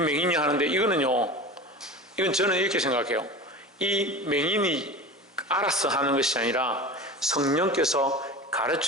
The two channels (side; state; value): both; normal; correlation 0.32